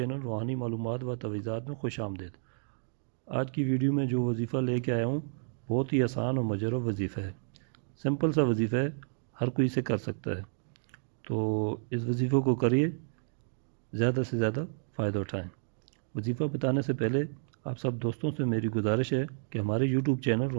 روحانی معلومات و تویزات میں خوش آمدید۔ آج کی ویڈیو میں جو وظیفہ لے کے آیا ہوں بہت ہی آسان اور مجرب وظیفہ ہے، سمپل سا وظیفہ ہے، ہر کوئی اسے کر سکتا ہے۔ تو اس وظیفے کو کریے، زیادہ سے زیادہ فائدہ اٹھائیں۔ وظیفہ بتانے سے پہلے آپ سب دوستوں سے میری گزارش ہے کہ ہمارے یوٹیوب چینل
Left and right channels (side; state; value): left; silent; digital silence